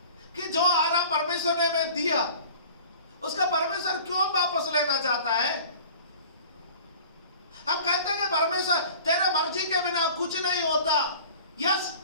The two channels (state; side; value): inverted; both; correlation -0.44